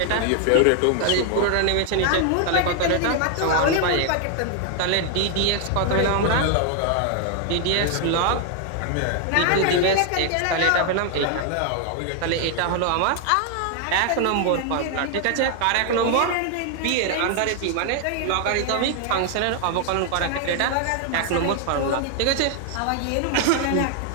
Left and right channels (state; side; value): different; both; correlation 0.00